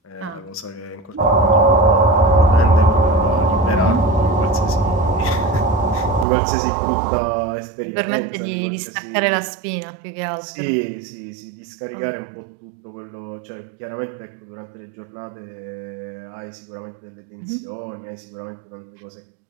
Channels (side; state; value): left; drops out; at 6.2 s